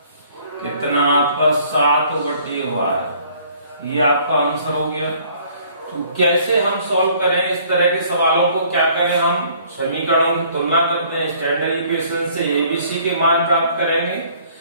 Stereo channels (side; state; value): both; inverted; correlation -0.58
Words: कितना आपका, 7/12। ये आपका आंसर हो गया। तो कैसे हम सॉल्व करें इस तरह के सवालों को, क्या करें, हम समीकरणों की तुलना करते हैं, स्टैंडर्ड इक्वेशन से एबीसी के मान प्राप्त करेंगे।